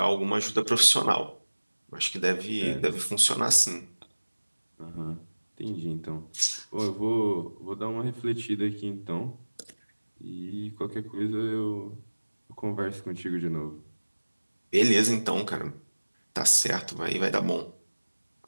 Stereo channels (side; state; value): both; inverted; correlation -1.00